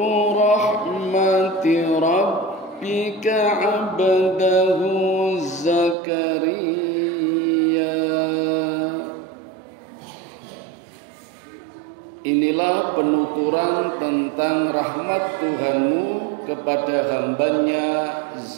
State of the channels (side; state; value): left; drops out; at 6.0 s